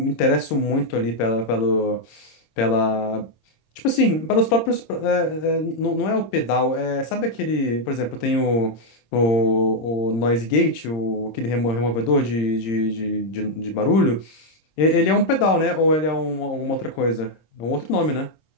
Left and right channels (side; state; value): right; late; 26 ms